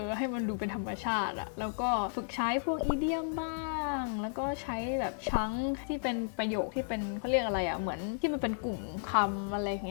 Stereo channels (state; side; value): silent; right; digital silence